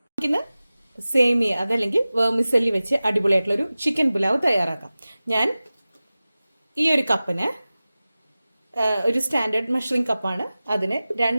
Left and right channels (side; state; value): both; inverted; correlation -0.96